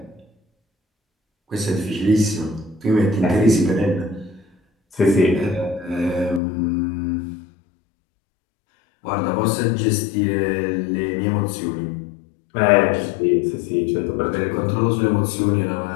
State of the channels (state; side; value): drops out; right; at 6.4 s